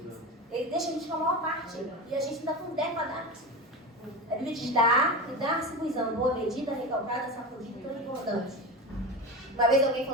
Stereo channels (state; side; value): normal; both; correlation 0.25